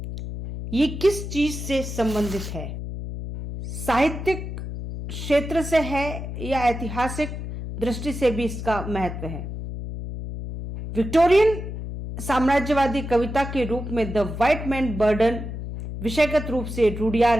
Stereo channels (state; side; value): noise; left; hum, 7 dB below the sound